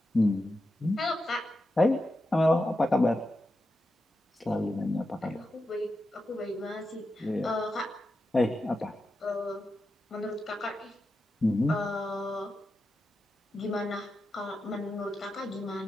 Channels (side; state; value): both; normal; correlation 0.89